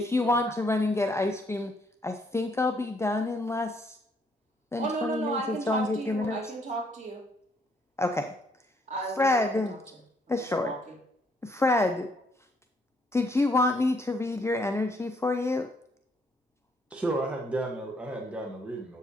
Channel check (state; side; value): normal; both; correlation 0.69